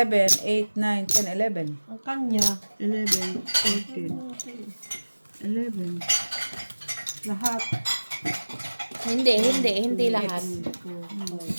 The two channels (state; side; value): inverted; both; correlation -1.00